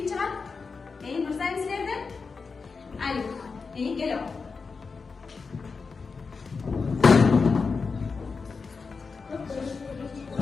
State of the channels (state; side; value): quieter; right; 4.8 dB